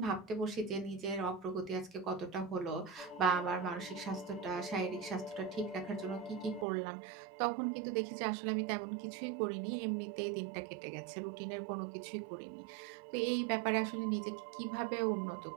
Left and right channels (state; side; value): drops out; left; at 6.7 s